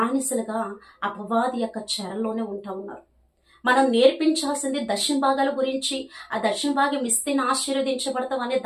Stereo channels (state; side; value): identical; both; correlation 1.00